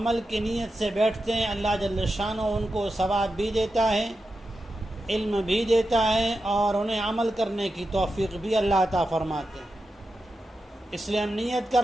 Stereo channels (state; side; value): normal; both; correlation 0.90